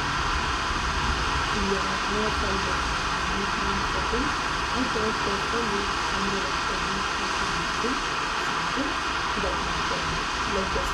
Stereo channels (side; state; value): both; identical; correlation 1.00